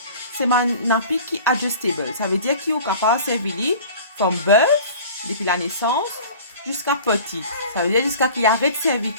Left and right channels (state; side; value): inverted; both; correlation -0.42